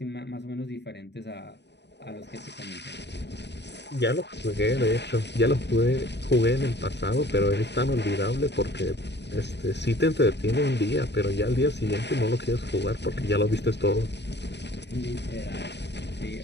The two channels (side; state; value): right; late; 0.50 ms